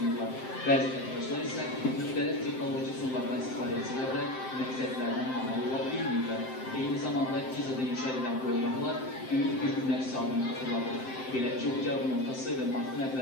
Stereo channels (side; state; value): right; late; 7.7 ms